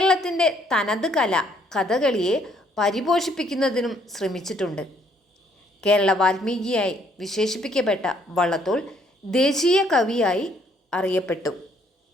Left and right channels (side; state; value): both; normal; correlation 0.66